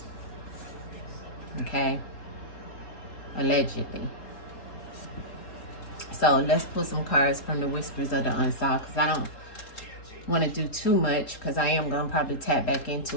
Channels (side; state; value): right; late; 3.8 ms